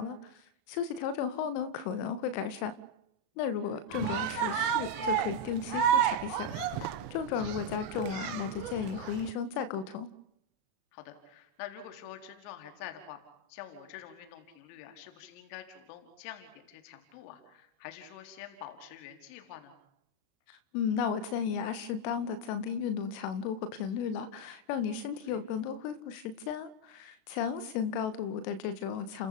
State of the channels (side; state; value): right; late; 37 ms